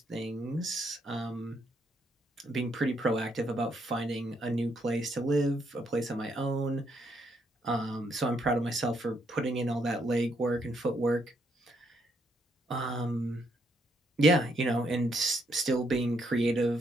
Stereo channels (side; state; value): both; normal; correlation 0.74